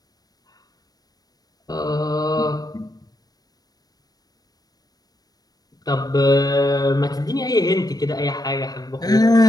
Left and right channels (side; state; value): right; late; 0.19 ms